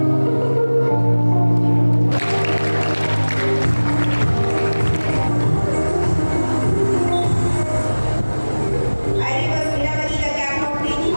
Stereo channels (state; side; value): inverted; both; correlation -1.00